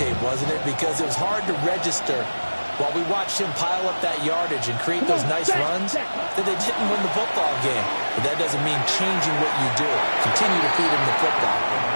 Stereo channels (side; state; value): both; inverted; correlation -1.00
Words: wasn't it? Because it was hard to register while we watched him pile up that yardage and create those nice runs that they didn't win the football game. But that doesn't mean changing what you do. Continue to feed him the football.